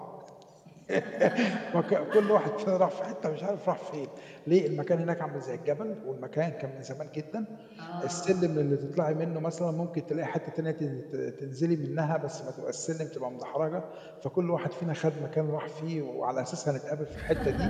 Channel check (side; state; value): both; identical; correlation 1.00